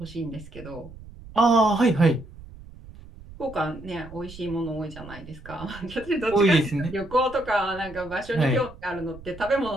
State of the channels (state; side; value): noise; right; rumble, 18 dB below the sound